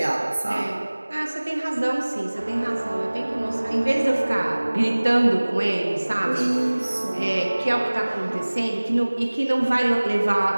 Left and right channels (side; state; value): both; inverted; correlation -1.00